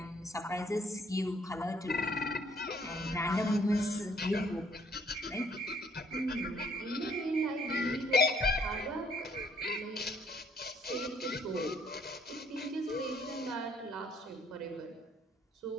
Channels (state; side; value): normal; both; correlation 0.65